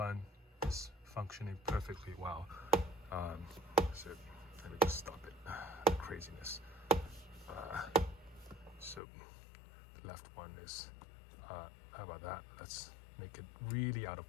is functioning perfectly well. So let me just stop it, the craziness. So the left one is how about that? Let's make it really out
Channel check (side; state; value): right; drops out; at 9.0 s